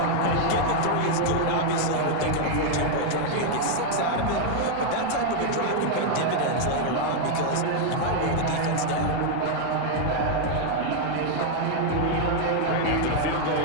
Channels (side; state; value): both; different; correlation 0.00